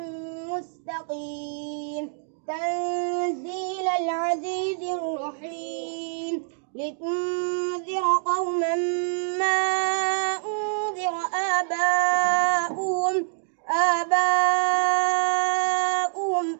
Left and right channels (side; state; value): left; silent; 61 dB below the other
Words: مستقيم تنزيل العزيز الرحيم لتنذر قوما ما أنذر آباؤهم